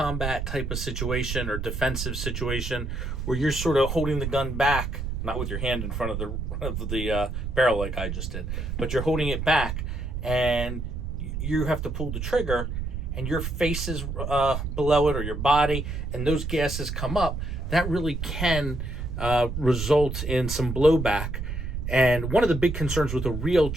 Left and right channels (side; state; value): right; noise; rumble, 4 dB below the sound